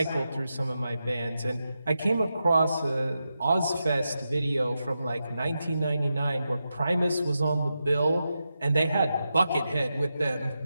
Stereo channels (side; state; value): both; inverted; correlation -0.88